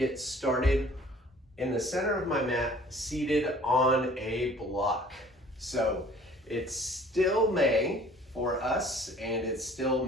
started in the center of my mat, seated on a block. So it's still May for us, and it's still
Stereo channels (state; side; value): normal; both; correlation 0.52